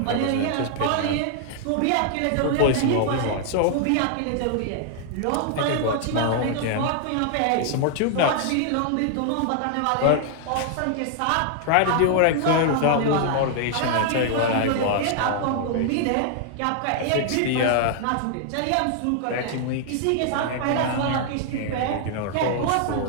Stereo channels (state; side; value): different; both; correlation 0.00